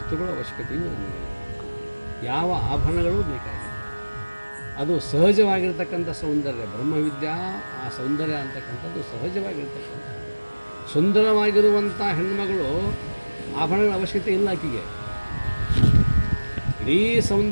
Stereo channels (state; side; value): inverted; both; correlation -1.00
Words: ಅವಶ್ಯಕತೆಯೂ ನಮಗೆ, ಯಾವ ಆಭರಣಗಳು ಬೇಕಾಗಿಲ್ಲ. ಅದು ಸಹಜವಾಗಿರ್ತಕ್ಕಂಥ ಸೌಂದರ್ಯ. ಬ್ರಹ್ಮವಿದ್ಯಾ ಆ ಸೌಂದರ್ಯ ಅಂತಕ್ಕಂಥದ್ದು ಸಹಜವಾಗಿರ್ತಕ್ಕಂಥ ಸುಂದರವಾಗಿರುವಂಥ ಹೆಣ್ಮಗಳು ಆಭರಣಗಳ ಅವಶ್ಯಕತೆ ಇಲ್ಲ ಆಕೆಗೆ. ಇಡೀ